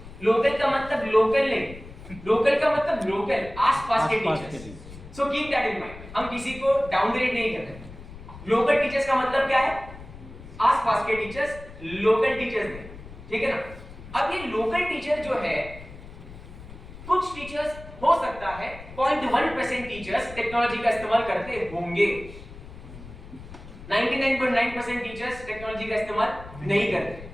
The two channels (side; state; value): left; noise; rumble, 16 dB below the sound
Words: लोकल का मतलब लोकल नहीं, लोकल का मतलब लोकल, आसपास के teachers. So keep that in mind. हम किसी को डाउनग्रेड नहीं कर रहे। लोकल टीचर्स का मतलब क्या है? आसपास के टीचर्स, लोकल टीचर्स नहीं, ठीक है ना? अब ये लोकल टीचर जो है, कुछ टीचर्स हो सकता है 0.1% टीचर्स टेक्नोलॉजी का इस्तेमाल करते होंगे, 99.9% टीचर्स टेक्नोलॉजी का इस्तेमाल नहीं करते।